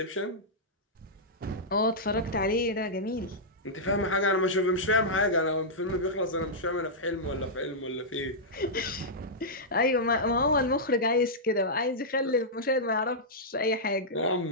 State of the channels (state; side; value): normal; both; correlation -0.10